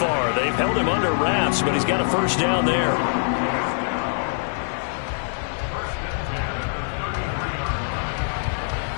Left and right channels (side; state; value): right; silent; 63 dB below the other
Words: They've held him under wraps, but he's got a first down there.